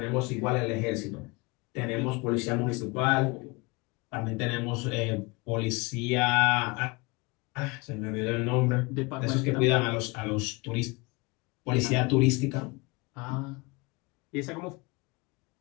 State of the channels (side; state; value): right; quieter; 26.5 dB